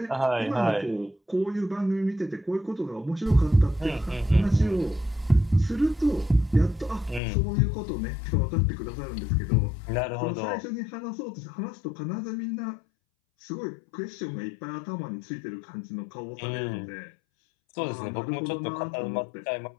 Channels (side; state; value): right; drops out; at 7.2 s